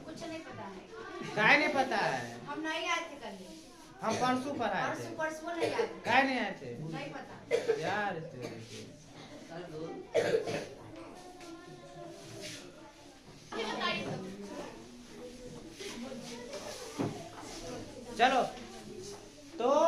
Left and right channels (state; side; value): identical; both; correlation 1.00